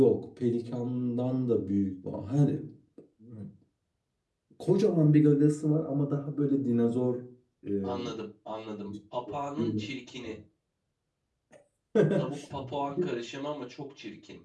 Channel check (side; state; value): both; identical; correlation 1.00